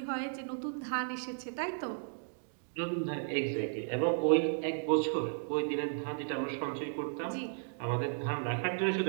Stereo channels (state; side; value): silent; left; digital silence